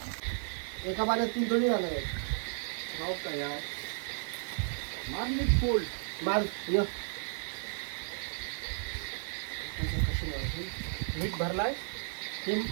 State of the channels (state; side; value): silent; left; digital silence